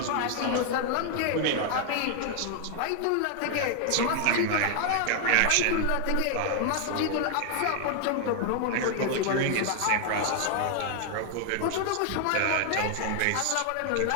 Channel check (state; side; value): different; both; correlation 0.00